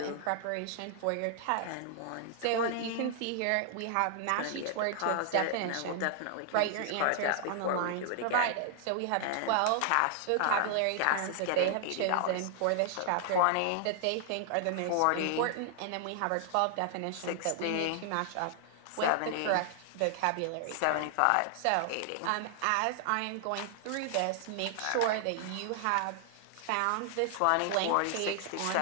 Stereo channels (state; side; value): different; both; correlation 0.00